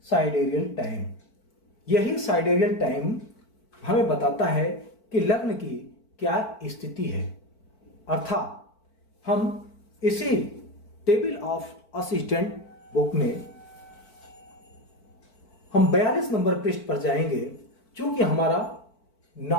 साइडेरियल टाइम। यही साइडेरियल टाइम हमें बताता है कि लग्न की क्या स्थिति है। अर्थात हम इसी टेबल ऑफ असिस्टेंट बुक में हम 42 नंबर पृष्ठ पर जाएंगे। चूंकि हमारा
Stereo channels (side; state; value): right; late; 4.5 ms